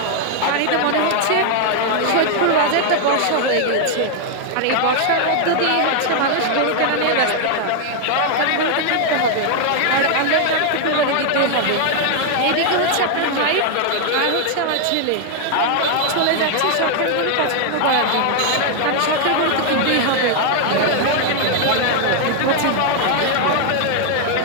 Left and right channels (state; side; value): different; both; correlation 0.00